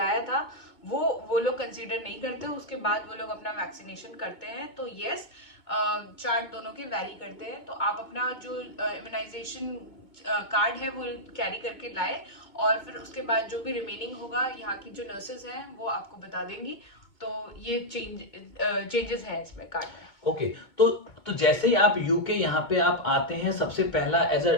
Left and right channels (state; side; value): late; right; 2.2 ms